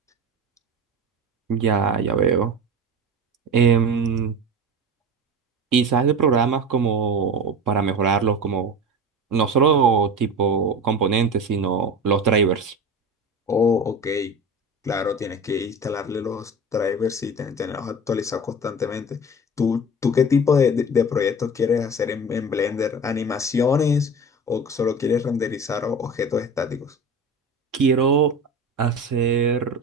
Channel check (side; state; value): both; normal; correlation 0.32